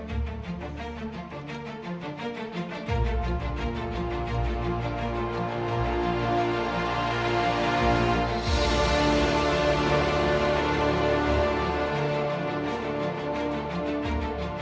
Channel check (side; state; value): both; identical; correlation 1.00